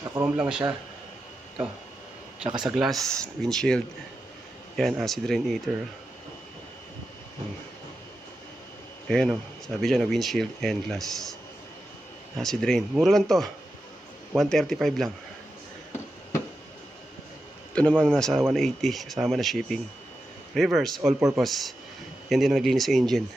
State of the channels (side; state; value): both; normal; correlation 0.90